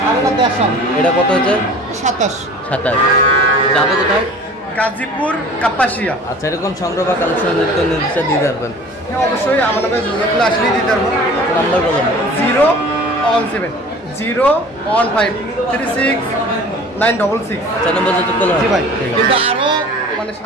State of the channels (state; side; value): normal; both; correlation 0.44